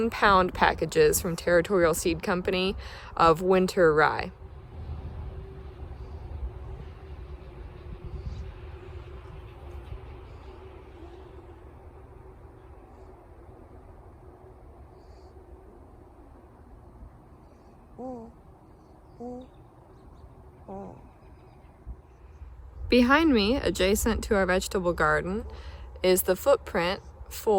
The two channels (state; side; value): identical; both; correlation 1.00